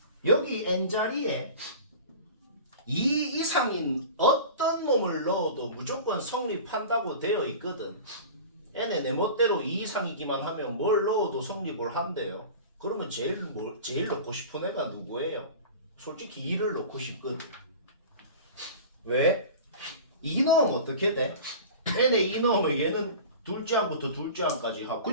여기 n자리에 2 이상인 어떤 놈을 넣어도 무조건 성립한다고 되어 있거든. n의 내 멋대로 2 이상이기만 하면 뭘 넣어도 성립을 한대요. 그러면 제일 넣고 싶은 애가 누구예요? 솔직히 2를 넣고 싶거든. 왜? 2 넣으면 어떻게 돼? n에 2 넣으면 얘는 둘째 항부터 둘째 항까지 하고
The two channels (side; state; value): both; inverted; correlation -0.36